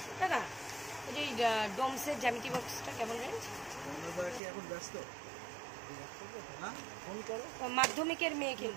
দাদা এই যে ডোমসের জ্যামিতি বক্সটা কেমন রেঞ্জ? কি এখন ব্যস্ত? হ্যাঁ, ফোন করো। মাধ্যমিকের মেয়ে,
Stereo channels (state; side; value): drops out; left; at 4.4 s